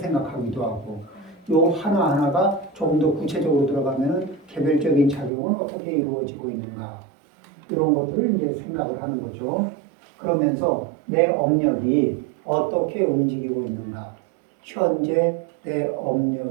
하고 요 하나하나가 조금 더 구체적으로 들어가면은 개별적인 작용은 어떻게 이루어지고 있는가 이런 것들을 이제 생각을 하는 거죠. 그러면서 내 업력이 어떻게 움직이고 있는가 현재 내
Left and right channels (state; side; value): drops out; left; at 5.3 s